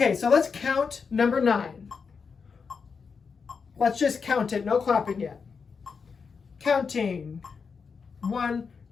so let's count number 9. Let's just count it, no clapping yet. Counting. 1,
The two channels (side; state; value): right; quieter; 5.5 dB